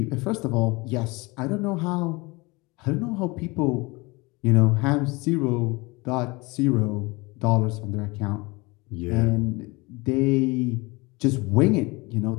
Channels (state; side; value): quieter; right; 25.0 dB